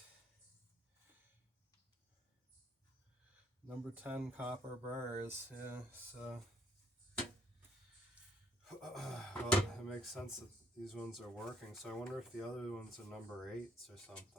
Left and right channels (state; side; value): normal; both; correlation 0.66